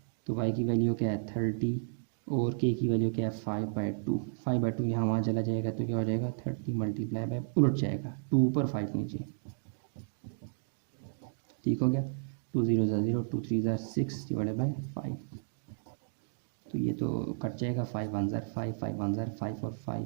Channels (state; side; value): silent; left; digital silence